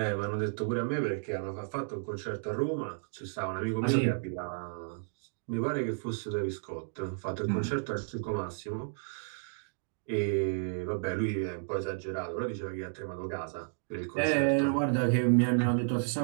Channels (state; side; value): silent; left; digital silence